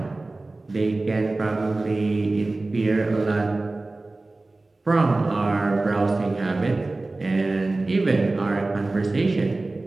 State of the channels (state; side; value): quieter; left; 3.1 dB